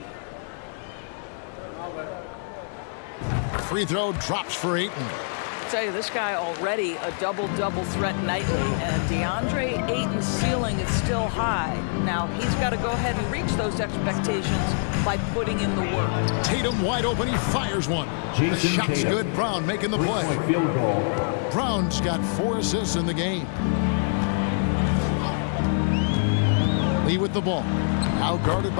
Free throw drops for Ayton. I tell you, this guy already a double-double threat nightly, and DeAndre Ayton's ceiling is still high. Now, he's got to go ahead and reach those expectations by putting in the work. Tatum wide open, he fires one. The shot's good, Brown making the play. Field goal. Brown's got 4 assists in the game. Lee with the ball. Now guarded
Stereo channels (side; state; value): right; silent; 60 dB below the other